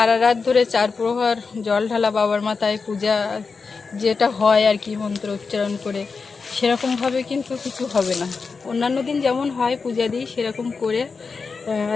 রাত ধরে 4 প্রহর জল ঢালা বাবার মাথায় পূজা যেটা হয় আর কি, মন্ত্র উচ্চারণ করে, সেরকমভাবে কিন্তু কিছু হবে না। অন্যান্য দিন যেমন হয় পূজা দিই, সেরকম করে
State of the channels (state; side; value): quieter; right; 4.8 dB